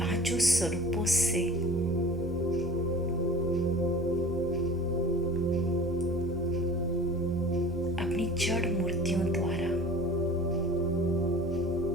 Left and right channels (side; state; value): both; normal; correlation 0.42